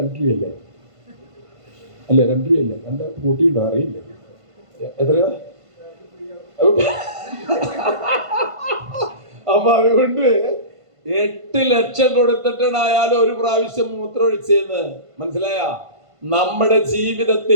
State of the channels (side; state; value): left; late; 1.5 ms